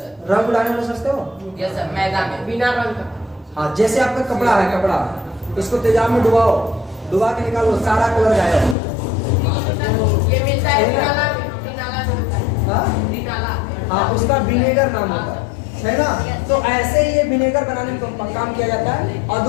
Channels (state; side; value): drops out; right; at 8.8 s